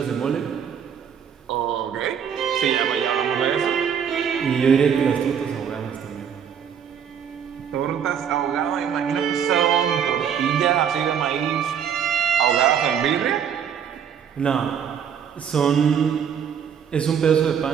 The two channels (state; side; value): quieter; left; 7.9 dB